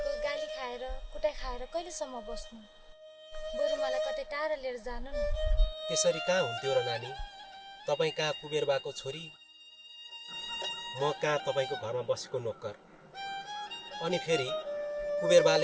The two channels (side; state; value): both; identical; correlation 1.00